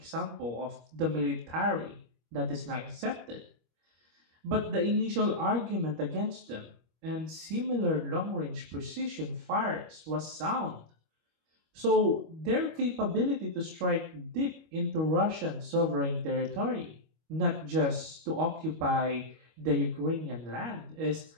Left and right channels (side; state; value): left; late; 25 ms